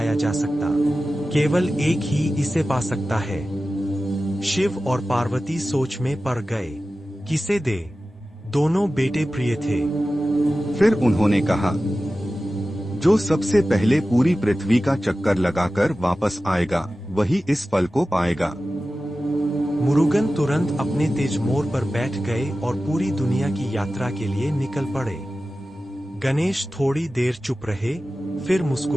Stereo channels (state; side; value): normal; both; correlation 0.95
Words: जा सकता। केवल एक ही इसे पा सकता है। शिव और पार्वती सोच में पड़ गए। किसे दे? दोनों बेटे प्रिय थे। फिर उन्होंने कहा, जो सबसे पहले पूरी पृथ्वी का चक्कर लगाकर वापस आएगा वही इस फल को पाएगा। मुरुगन तुरंत अपने तेज मोर पर बैठ गए और पूरी दुनिया की यात्रा के लिए निकल पड़े। गणेश थोड़ी देर चुप रहे, फिर